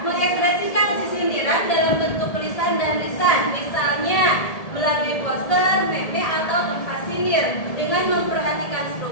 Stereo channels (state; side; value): late; right; 1.7 ms